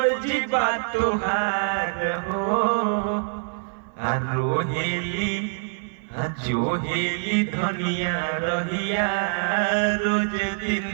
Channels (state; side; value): silent; left; 62 dB below the other